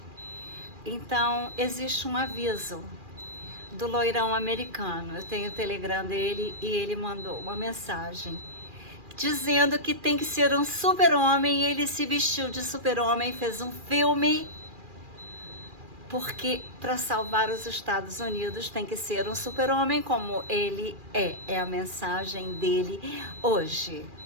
Então, existe um aviso do loirão americano. Eu tenho o Telegram dele e ele mandou uma mensagem dizendo que tem que ser um super-homem. Ele se vestiu de super-homem, fez um filme, porque para salvar os Estados Unidos tem que ser um super-homem como ele é. É a mensagem dele hoje.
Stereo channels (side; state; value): left; late; 2.4 ms